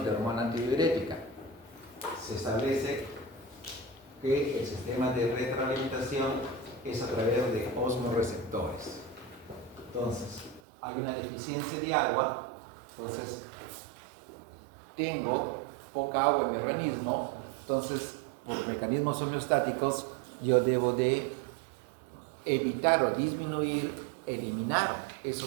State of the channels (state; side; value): drops out; left; at 10.6 s